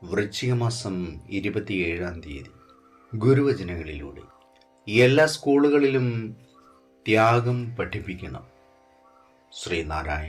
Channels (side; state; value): both; identical; correlation 1.00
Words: വൃശ്ചിക മാസം 27 ഗുരുവചനങ്ങളിലൂടെ എല്ലാ സ്കൂളുകളിലും ത്യാഗം പഠിപ്പിക്കണം.